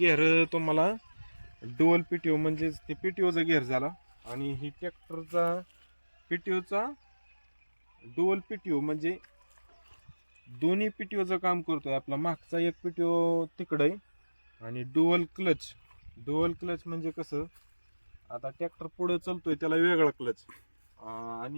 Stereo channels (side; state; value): both; inverted; correlation -1.00